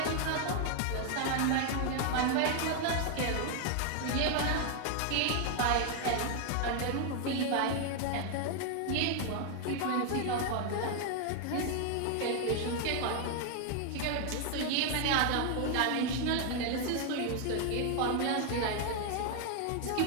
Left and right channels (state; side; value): different; both; correlation 0.00